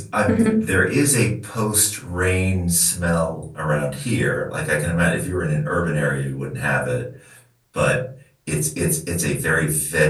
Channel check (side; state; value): both; identical; correlation 1.00